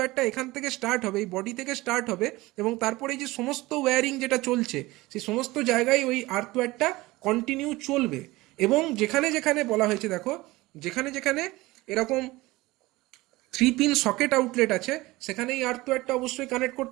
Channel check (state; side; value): quieter; left; 20.0 dB